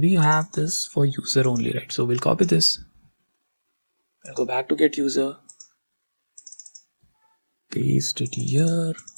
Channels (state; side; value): inverted; both; correlation -1.00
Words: have this for user only, right? So we'll copy this, we'll go back to get user, paste it here.